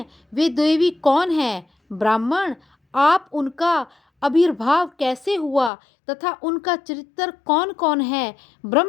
वे देवी कौन है? ब्राह्मण, आप उनका आविर्भाव कैसे हुआ तथा उनका चरित्र कौन कौन है?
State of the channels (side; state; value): right; drops out; at 5.7 s